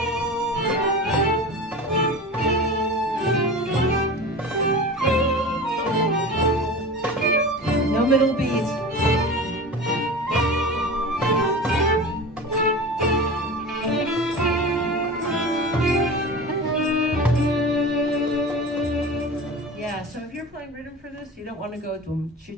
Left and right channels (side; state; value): both; normal; correlation 0.32